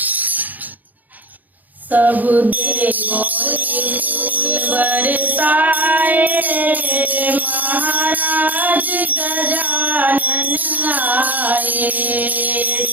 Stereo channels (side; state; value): left; late; 0.082 ms